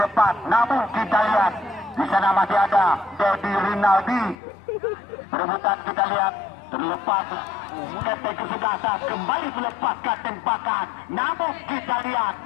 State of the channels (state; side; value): drops out; right; at 4.4 s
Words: depan, namun kita lihat di sana masih ada Dedi Rinaldi. Perebutan kita lihat terlepas, keseng kesebelasan kembali melepaskan tembakan, namun kita lihat